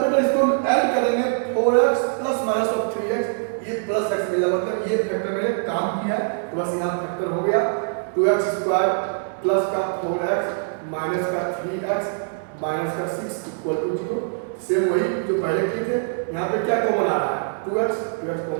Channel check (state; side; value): silent; left; 63 dB below the other